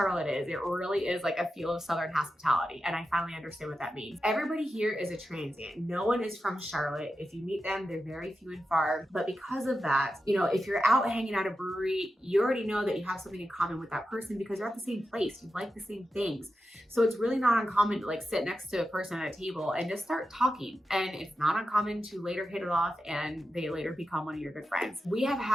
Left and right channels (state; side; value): normal; both; correlation 0.90